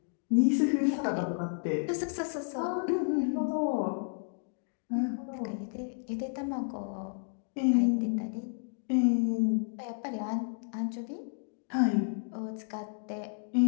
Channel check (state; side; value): silent; right; 57 dB below the other